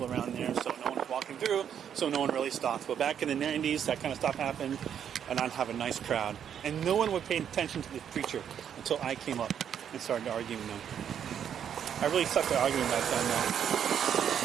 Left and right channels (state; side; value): quieter; left; 8.7 dB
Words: around there, so no one was walking through, so no one really stopped. But back in the 90s, that kind of stuff happened, and I'd have a nice crowd. And no one would pay attention to the preacher until I came up and started arguing with them. I really sucked at arguing back then, though.